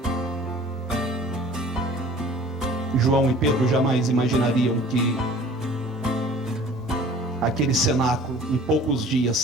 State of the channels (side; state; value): both; normal; correlation 0.48